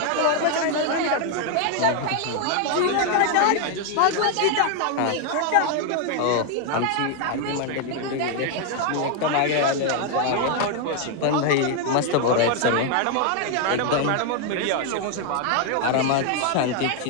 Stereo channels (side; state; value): both; different; correlation 0.00